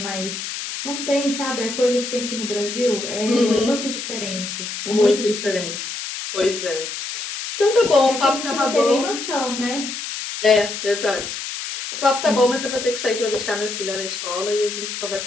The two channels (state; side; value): noise; left; hiss, 6 dB below the sound